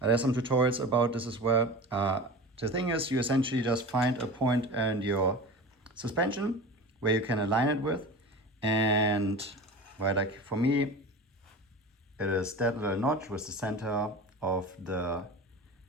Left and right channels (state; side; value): normal; both; correlation 0.33